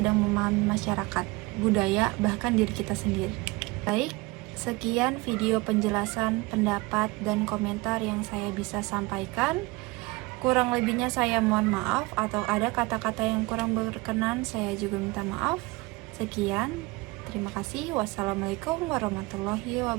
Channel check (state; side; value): quieter; left; 23.2 dB